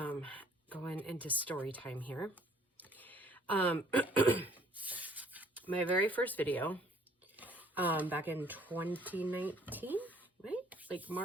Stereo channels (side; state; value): both; normal; correlation 0.58